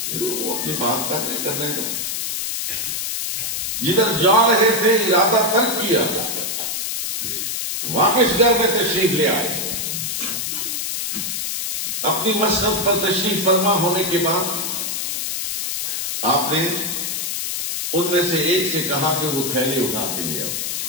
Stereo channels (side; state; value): left; noise; hiss, 2 dB below the sound